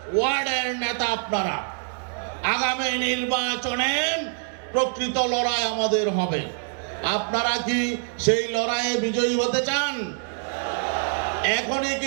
ওয়ার্ডের নেতা আপনারা, আগামী নির্বাচনে প্রকৃত লড়াই আমাদের হবে। আপনারা কি সেই লড়াইয়ে বিজয়ী হতে চান? এখনই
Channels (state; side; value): silent; left; digital silence